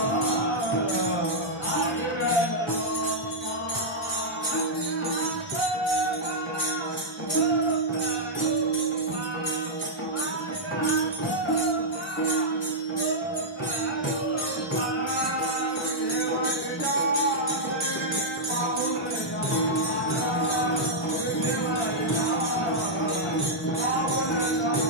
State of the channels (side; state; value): both; normal; correlation -0.07